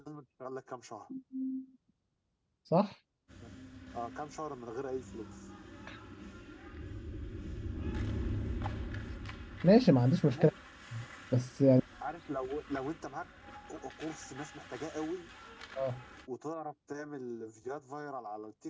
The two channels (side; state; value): both; identical; correlation 1.00